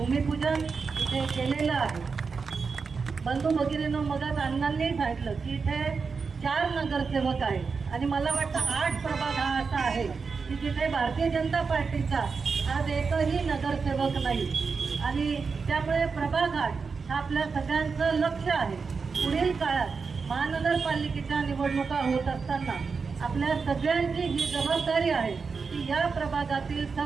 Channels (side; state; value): left; quieter; 5.0 dB